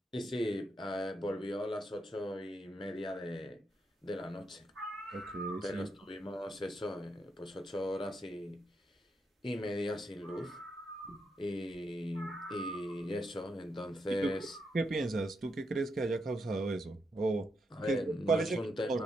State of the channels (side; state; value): both; normal; correlation 0.81